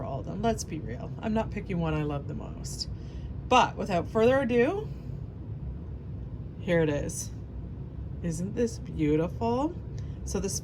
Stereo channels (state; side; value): identical; both; correlation 1.00